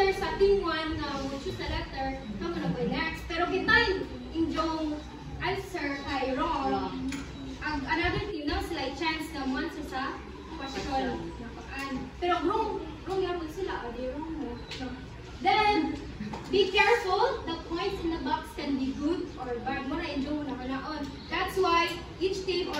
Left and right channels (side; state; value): both; identical; correlation 1.00